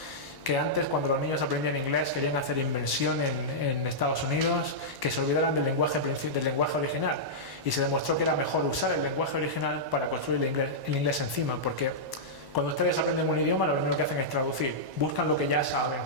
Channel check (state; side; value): late; left; 1.1 ms